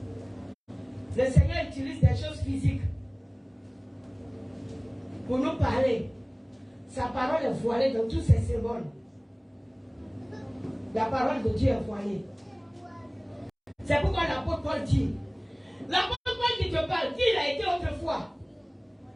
Le Seigneur utilise des choses physiques pour nous parler. Sa parole est voilée dans tous ses symboles. La parole de Dieu est voilée. C'est pourquoi l'apôtre Paul dit, l'apôtre Paul qui te parle, qui il a été autrefois?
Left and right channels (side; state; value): both; identical; correlation 1.00